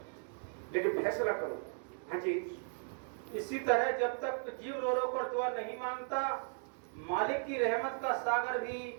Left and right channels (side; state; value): left; silent; 53 dB below the other